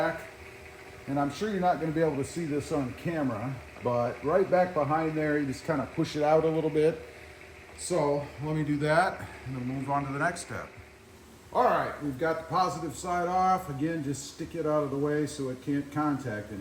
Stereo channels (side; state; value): both; identical; correlation 1.00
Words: and I'm sure you're not going to be able to see this on camera, but right back behind there, you just kind of push it out a little bit. So let me do that, and then move on to the next step. All right, we've got the positive side off. Again, just stick it out of the way so it can't contact